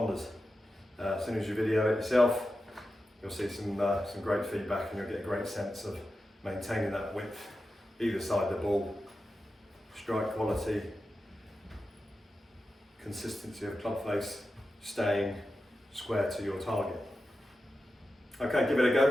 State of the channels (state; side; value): normal; both; correlation 0.91